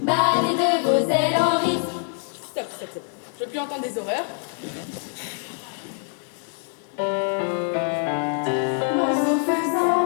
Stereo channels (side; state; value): right; silent; 56 dB below the other